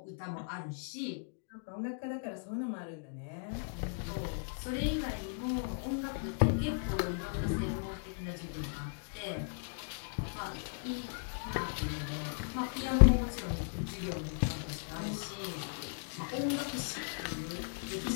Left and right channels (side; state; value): right; silent; digital silence